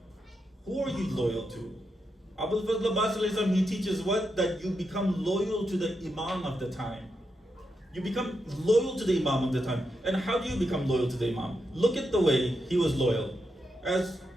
Who are you loyal to? Abul Fazl Abbas alayhi salam, he teaches what? That you become loyal to the Imam of the time. You become loyal to the Imam of the time. And how do you become loyal to the Imam? Look at the way he was loyal. As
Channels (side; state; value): both; normal; correlation 0.85